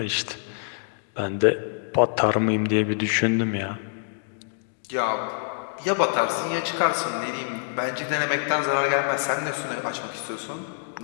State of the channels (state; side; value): silent; right; digital silence